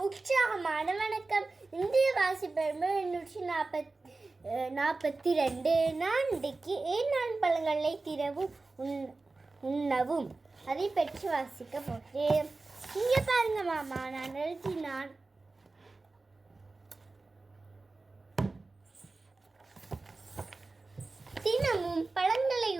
உற்சாகமான வணக்கம். இந்திய வாசிப்பெருமை 842. நான் இன்றைக்கு ஏன் பழங்களை திறவும் உண்ணவும் அதை பற்றி வாசிக்க போகிறேன். இங்கே பாருங்க மாமா, நான் எழுதினான். தினமும் பழங்களை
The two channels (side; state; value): left; quieter; 3.5 dB